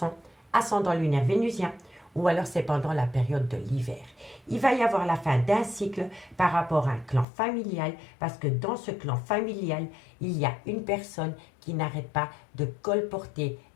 ascendant lunaire vénusien, ou alors c'est pendant la période de l'hiver. Il va y avoir la fin d'un cycle par rapport à un clan familial, parce que dans ce clan familial, il y a une personne qui n'arrête pas de colporter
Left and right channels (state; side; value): drops out; right; at 7.2 s